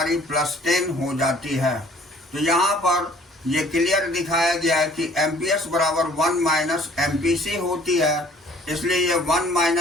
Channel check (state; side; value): normal; both; correlation 0.56